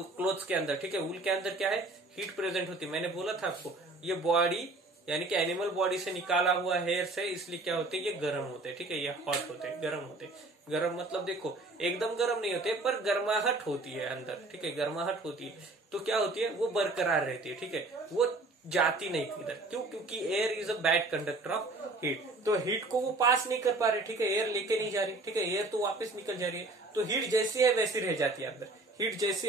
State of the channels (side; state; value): left; quieter; 3.0 dB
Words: क्लोथ्स के अंदर, ठीक है, वूल के अंदर क्या है? हीट प्रेजेंट होती है। मैंने बोला था आपको, ये बॉडी यानी कि एनिमल बॉडी से निकाला हुआ हेयर से, इसलिए क्या होते हैं? ये गर्म होते हैं। ठीक है, ये हॉट होते हैं, गर्म होते हैं। गर्म मतलब देखो, एकदम गर्म नहीं होते, पर गर्माहट होती है अंदर। ठीक है, गर्माहट होती है, तो क्या होती है? वो बरकरार रहती है। ठीक है, वो जाती नहीं किधर। क्यों? क्योंकि air is a bad conductor of heat, तो हीट को वो पास नहीं कर पा रहे। ठीक है, एयर लेके नहीं जा रही। ठीक है, एयर तो वापस निकल जा रही है, तो हीट जैसी है वैसी रह जाती है अंदर, हीट जैसी